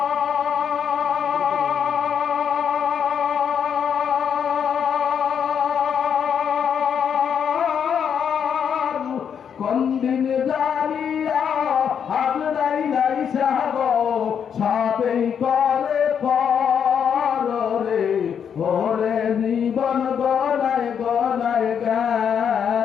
কোন দিন জানিয়া হাজরাই নাই সাগো সবেই করে পরে ওরে জীবন গনায় গনায়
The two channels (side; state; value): right; quieter; 7.7 dB